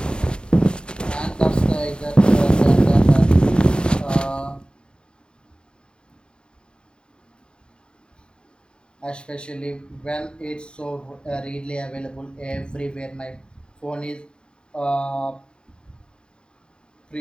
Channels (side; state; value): right; late; 0.050 ms